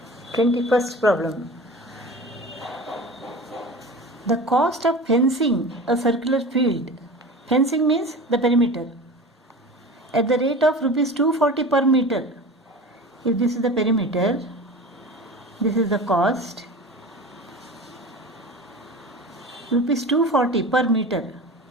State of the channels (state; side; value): normal; both; correlation 0.34